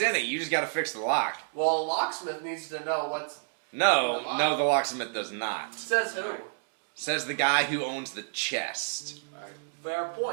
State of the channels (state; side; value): silent; left; digital silence